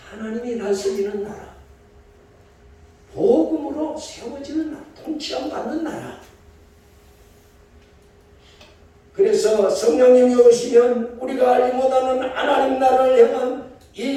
하나님이 다스리는 나라, 복음으로 세워지는 나라, 통치함 받는 나라. 그래서 성령님이 오시면 우리가 알지 못하는 하나님 나라를 향한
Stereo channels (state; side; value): identical; both; correlation 1.00